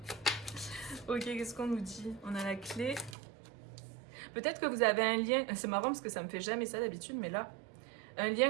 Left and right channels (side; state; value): left; drops out; at 3.2 s